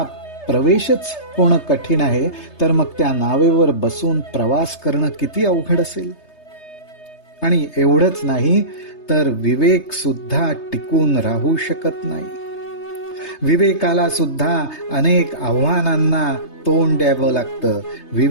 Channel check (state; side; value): late; right; 3.3 ms